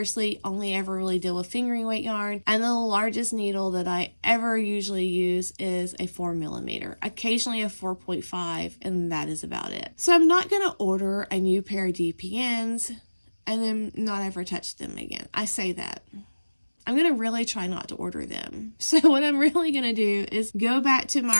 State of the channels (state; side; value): inverted; both; correlation -1.00